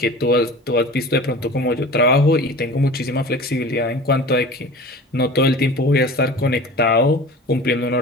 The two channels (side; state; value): both; normal; correlation 0.38